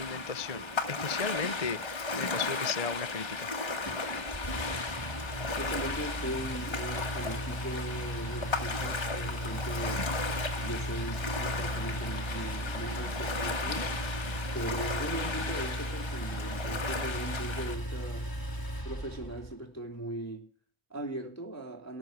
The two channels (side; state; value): right; late; 1.3 ms